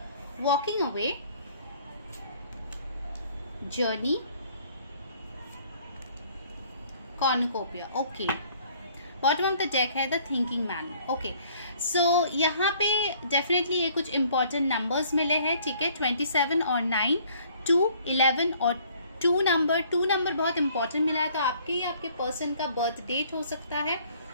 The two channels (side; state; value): both; inverted; correlation -0.58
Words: Walking away, journey, cornucopia, okay. Bottom of the deck है the thinking man, okay. So यहाँ पे डेफिनेटली ये कुछ इंपॉर्टेंट नंबर्स मिले हैं, ठीक है। 27 और 9, 2, 11 और 2 नंबर बहुत इंपॉर्टेंट मिला है। तो आपके या आपके पर्सन का बर्थ डेट हो